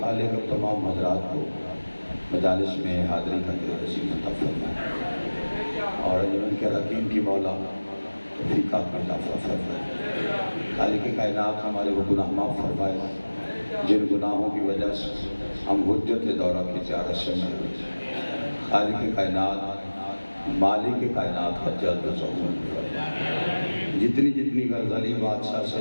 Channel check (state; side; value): inverted; both; correlation -1.00